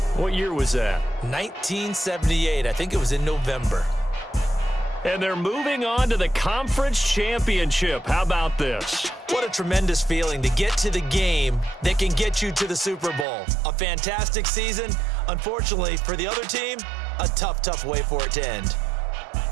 What year was that? 1978. I think it was in November. And they're moving on to the conference championship. How about this? What a tremendous feeling to get to the game that can get you to the Super Bowl. A fantastic season. Unfortunately, for the other team, a tough way for it to end.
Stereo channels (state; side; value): drops out; left; at 13.2 s